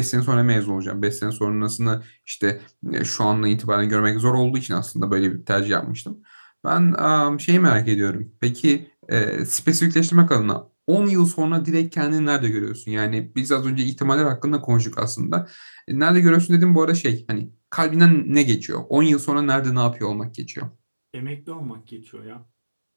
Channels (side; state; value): both; inverted; correlation -1.00